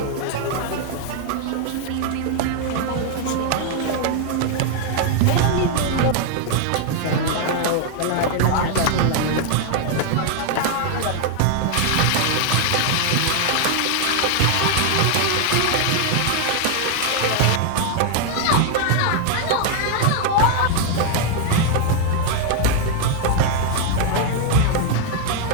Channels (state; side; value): different; both; correlation 0.00